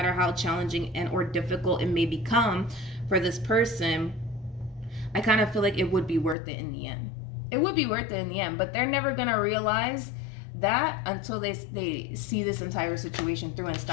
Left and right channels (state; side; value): drops out; right; at 6.4 s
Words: how challenging and or difficult it may become for this person, I kind of feel like it would be worth it in the end. It would be worth it in the end, but they're never going to realize that until they see this entire situation through and